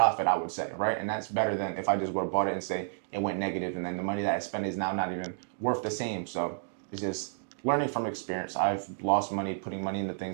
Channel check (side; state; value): left; silent; digital silence